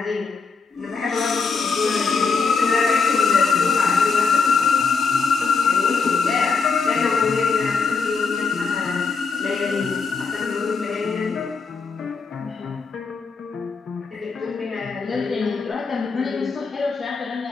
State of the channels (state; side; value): quieter; right; 4.9 dB